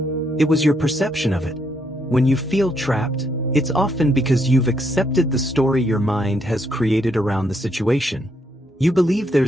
It was your perception of it. When you feel trapped, it's often because you've accepted the story your mind has created around the situation. You believe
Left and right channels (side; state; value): both; normal; correlation 0.75